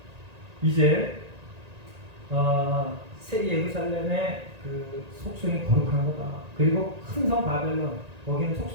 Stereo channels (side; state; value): left; late; 1.9 ms